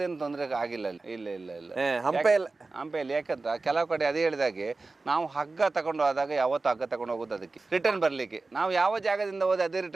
ತೊಂದರೆ ಆಗಿಲ್ಲ ಅಲ್ಲಿ. ಇಲ್ಲ ಹಂಪೆಯಲ್ಲಿ ಯಾಕಂತ ಕೆಲವು ಕಡೆ ಅದೇ ಹೇಳಿದಾಗೆ ನಾವು ಹಗ್ಗ ತಗೊಂಡು ಹೋದಾಗ ಯಾವತ್ತು ಹಗ್ಗ ತಗೊಂಡು ಹೋಗೋದು ಅದಕ್ಕೆ ರಿಟರ್ನ್ ಬರ್ಲಿಕ್ಕೆ. ನಾವು ಯಾವ ಜಾಗದಿಂದ ಹೋದ್ರೆ ಅದೇ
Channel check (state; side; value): quieter; left; 3.6 dB